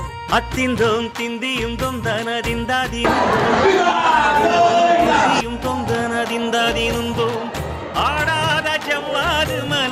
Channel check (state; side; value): identical; both; correlation 1.00